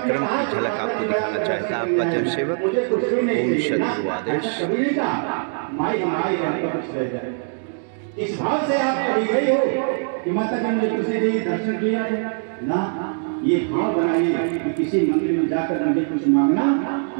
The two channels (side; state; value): left; silent; 63 dB below the other